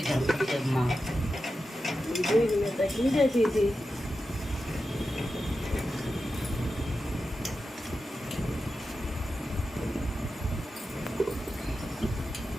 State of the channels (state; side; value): normal; both; correlation 0.91